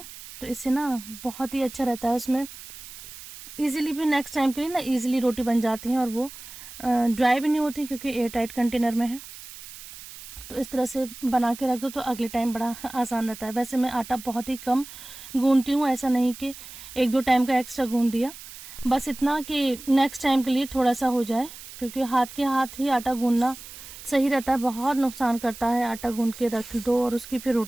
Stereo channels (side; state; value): right; noise; hiss, 15 dB below the sound